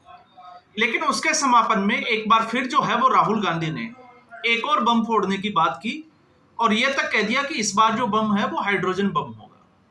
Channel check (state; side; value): identical; both; correlation 1.00